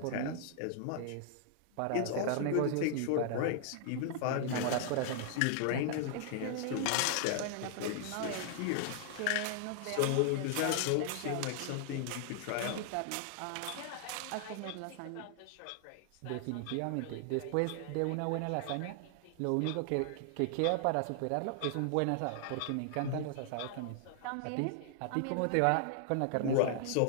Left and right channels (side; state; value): both; different; correlation 0.00